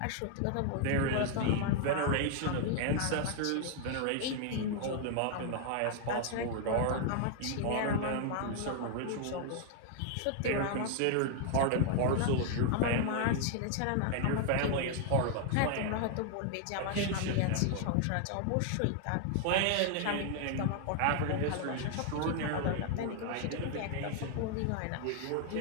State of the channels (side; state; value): both; different; correlation 0.00